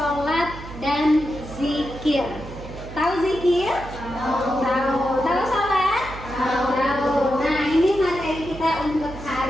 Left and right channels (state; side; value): noise; right; hum, 13 dB below the sound